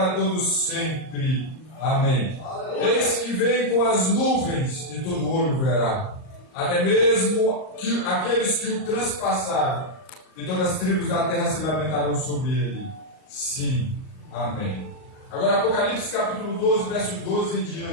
todos sempre. Amém. Eis que vem com as nuvens e todo olho verá, até mesmo aqueles que o transpassaram, e todas as tribos da terra se lamentarão sobre ele. Sim. Amém. Agora Apocalipse capítulo 12, verso 12 em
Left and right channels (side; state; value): right; late; 38 ms